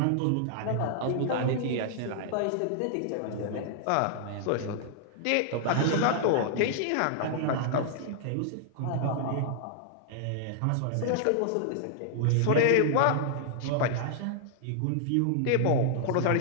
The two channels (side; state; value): both; different; correlation -0.01